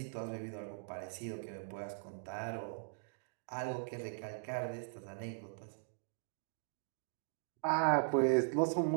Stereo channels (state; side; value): silent; left; digital silence